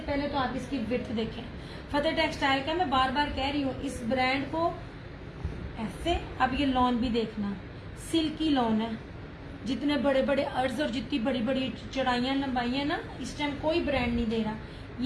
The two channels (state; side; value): identical; both; correlation 1.00